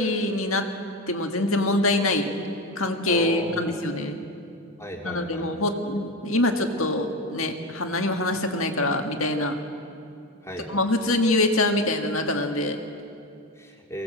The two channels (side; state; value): both; normal; correlation 0.19